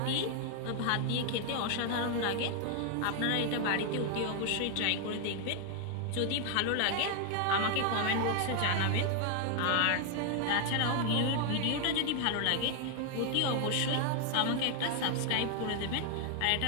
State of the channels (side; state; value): both; different; correlation 0.00